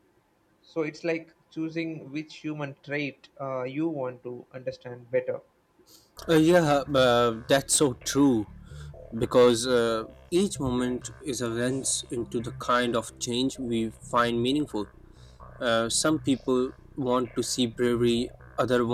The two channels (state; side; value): identical; both; correlation 1.00